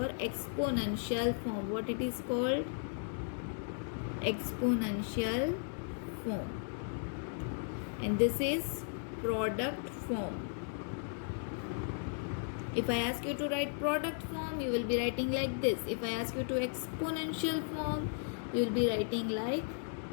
exponential form. What it is called? Exponential form. And this is product form. If I ask you to write product form, you will be writing like this. If I ask you to exponential form, you will be writing like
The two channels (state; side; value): silent; right; digital silence